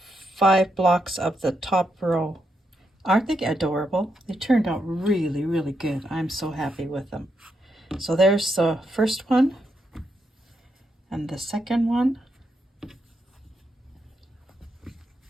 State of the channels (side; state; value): both; normal; correlation 0.82